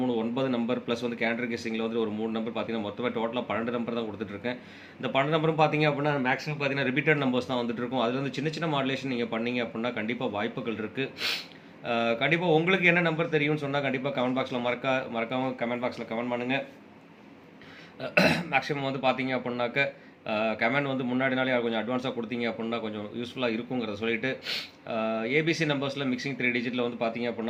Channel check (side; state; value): both; identical; correlation 1.00